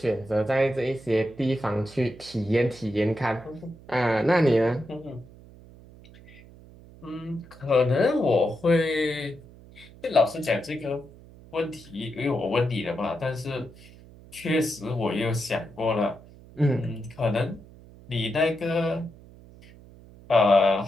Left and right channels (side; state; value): right; noise; hum, 21 dB below the sound